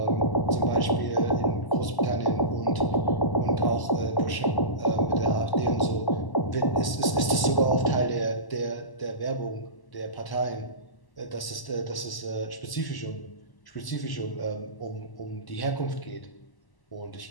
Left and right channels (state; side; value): late; right; 1.0 ms